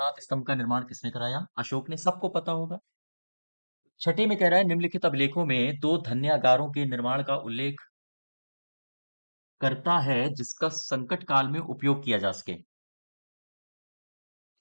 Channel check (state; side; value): inverted; both; correlation -1.00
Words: स्तंभ का निर्माण किसने कराया? अशोक ने, सबको पता होगा। छठे में कह रहा है निम्नलिखित अभिलेखों में दो धन्यागारों के निर्माण का उल्लेख करता है जिसका संकट काल में उपयोग किया जा सके।